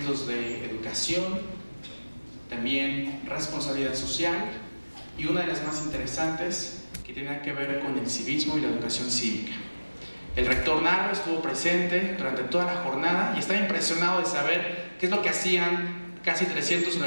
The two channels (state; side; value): inverted; both; correlation -1.00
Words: de educación, también responsabilidad social, y una de las más interesantes que tenía que ver con el civismo y la educación cívica. El rector Narro estuvo presente durante toda la jornada y estaba impresionado de saber qué es lo que hacían casi 300